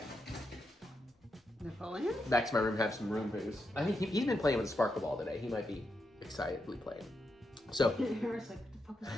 to my room, have some room booze. I think he's been playing with a sparkle ball today. He might be excitedly playing. So,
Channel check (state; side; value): normal; both; correlation 0.84